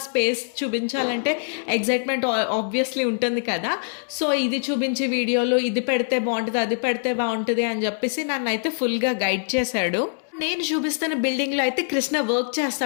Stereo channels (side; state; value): right; silent; digital silence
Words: స్పేస్ చూపించాలంటే ఎగ్జైట్మెంట్ ఆబ్వియస్లీ ఉంటుంది కదా. సో ఇది చూపించి వీడియోలో ఇది పెడితే బాగుంటుంది, అది పెడితే బాగుంటుంది అని చెప్పేసి నన్ను అయితే ఫుల్గా గైడ్ చేశాడు. నేను చూపిస్తున్న బిల్డింగ్లో అయితే కృష్ణ వర్క్